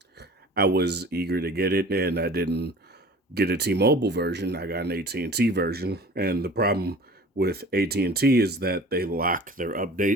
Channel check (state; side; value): normal; both; correlation 0.43